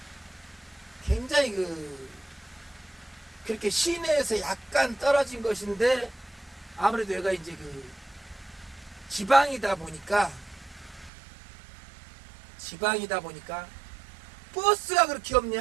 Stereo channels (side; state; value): left; drops out; at 11.1 s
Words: 굉장히 그렇게 시내에서 약간 떨어진 것인데 아무래도 얘가 이제 지방이다 보니까 버스가 그렇게